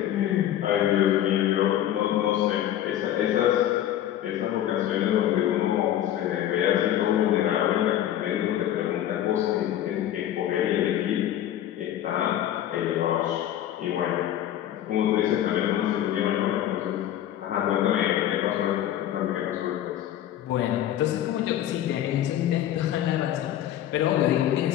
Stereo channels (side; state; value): right; quieter; 11.8 dB